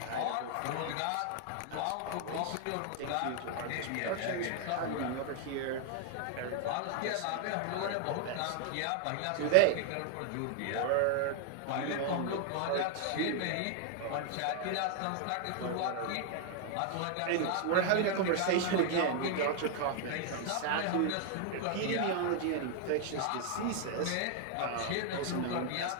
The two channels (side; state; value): both; different; correlation 0.00